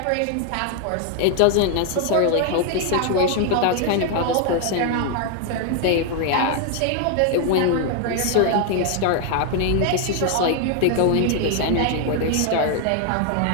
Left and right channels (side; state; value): both; different; correlation 0.00